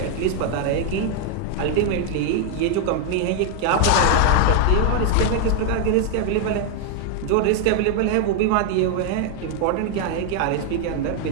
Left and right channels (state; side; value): different; both; correlation 0.00